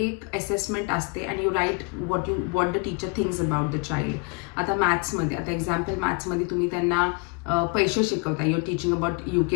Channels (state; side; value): quieter; right; 32.7 dB